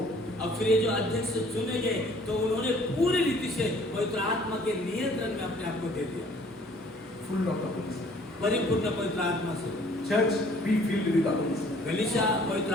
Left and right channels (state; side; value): normal; both; correlation 0.56